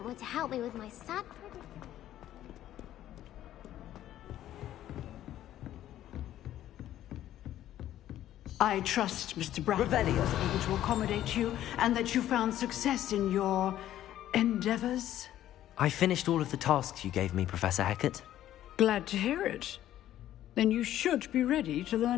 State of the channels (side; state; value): right; quieter; 12.6 dB